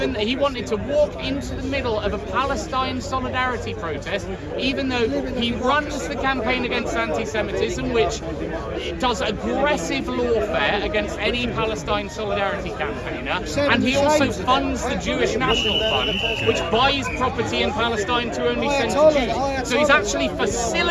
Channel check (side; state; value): both; identical; correlation 1.00